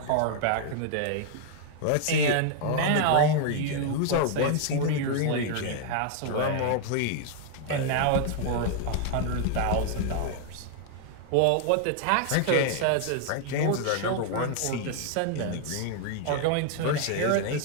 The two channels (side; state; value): both; different; correlation 0.00